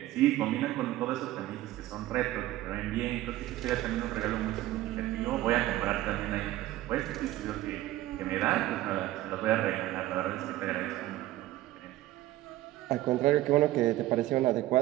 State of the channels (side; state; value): left; quieter; 15.7 dB